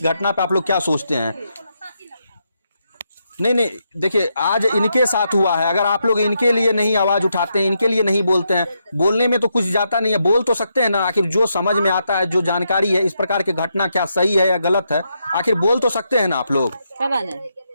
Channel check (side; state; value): both; inverted; correlation -0.81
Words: घटना पे आप लोग क्या सोचते हैं। नहीं, देखिए आज इनके साथ हुआ है, अगर आप लोग इनके लिए नहीं आवाज उठाते हैं, इनके लिए नहीं बोलते हैं, बोलने में तो कुछ जाता नहीं है, बोल तो सकते हैं ना। आखिर जो समझ में आता है, जो जानकारी है, इस प्रकार की घटना क्या सही है या गलत है, आखिर बोल तो सकते हैं ना आप लोग।